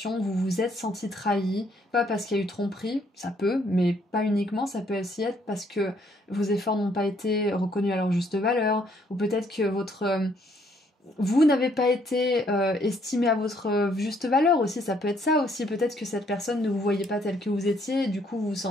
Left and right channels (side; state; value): both; normal; correlation 0.67